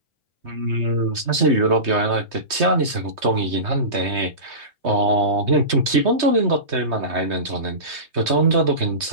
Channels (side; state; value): left; late; 3.2 ms